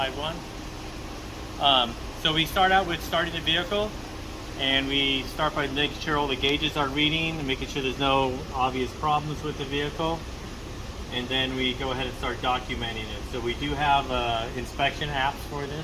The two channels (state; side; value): identical; both; correlation 1.00